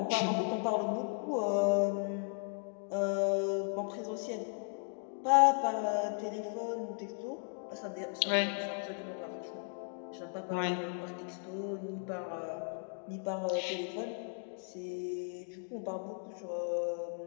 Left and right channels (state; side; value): silent; right; 54 dB below the other